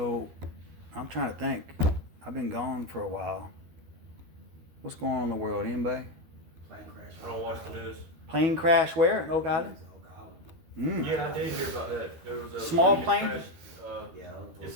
I'm trying to think. I've been gone for a while. What's going on in the world? Anybody? Plane crash. I don't watch the news. Plane crash where? In Oak Island? Yeah, I did hear about that. There was a Small plane that plane? crashed, Yeah. it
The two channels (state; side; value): late; left; 13 ms